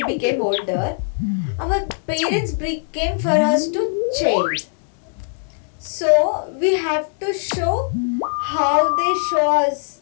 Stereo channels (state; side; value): silent; right; digital silence